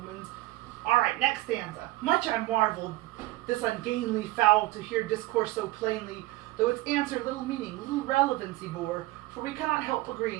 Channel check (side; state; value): left; quieter; 18.7 dB